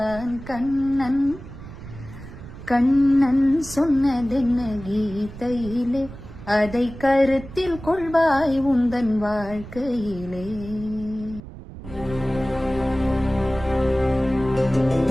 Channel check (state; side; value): noise; right; rumble, 14 dB below the sound